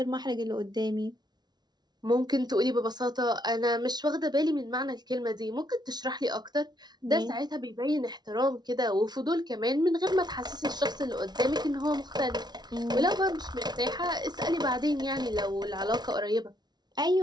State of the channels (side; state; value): left; late; 0.20 ms